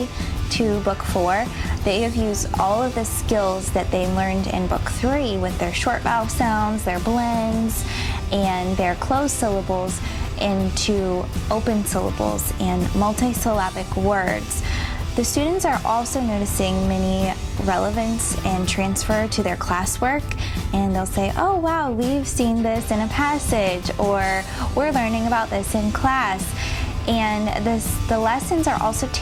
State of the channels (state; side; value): identical; both; correlation 1.00